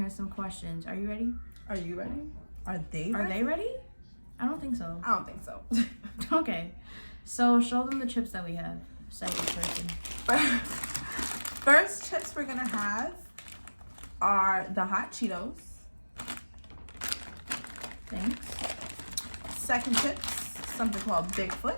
some questions. Are you ready? Are you ready? Are they ready? Are they ready? I don't think so. I don't think so. Okay, so show them the chips that we have. Second person. First chips we're gonna have are the hot Cheetos. Thanks. Second chips, something called Bigfoot.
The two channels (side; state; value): both; inverted; correlation -1.00